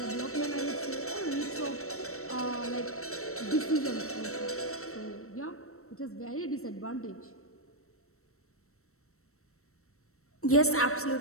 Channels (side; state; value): right; late; 0.63 ms